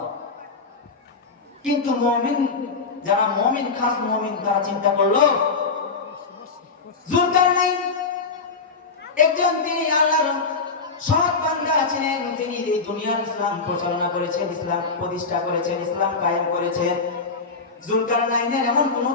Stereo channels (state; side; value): quieter; right; 4.5 dB